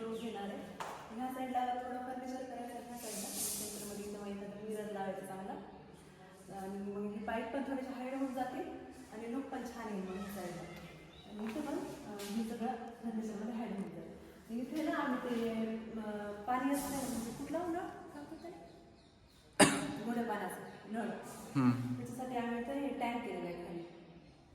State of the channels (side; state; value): both; identical; correlation 1.00